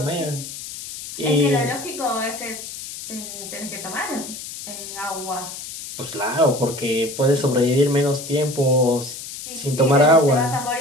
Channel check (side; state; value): left; noise; hiss, 10 dB below the sound